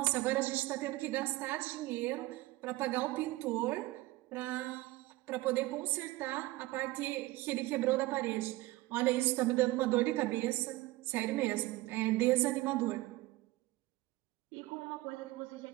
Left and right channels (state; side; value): quieter; left; 19.1 dB